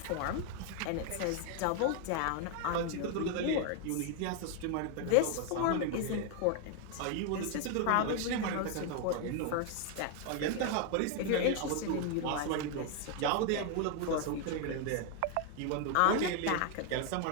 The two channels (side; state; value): both; different; correlation 0.00